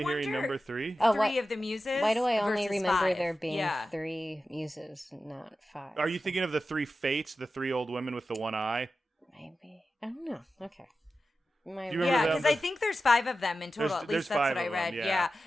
hearing wonder- number 3? Oh, 3 of the muses. Why do I only versus remember 5. there being Yeah. 3 muses, not 5? Are you thinking of the 3 fates, the 3 old women with the one eye? Maybe. I don't know. Okay. Do you remember Yeah, them? because I think there's 5 of them in total. There's- At there's least that's 5 what I of them, read. yeah.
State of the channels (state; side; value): normal; both; correlation 0.93